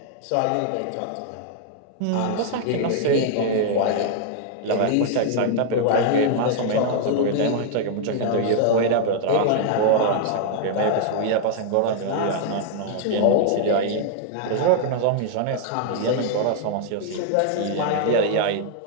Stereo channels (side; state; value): both; different; correlation -0.01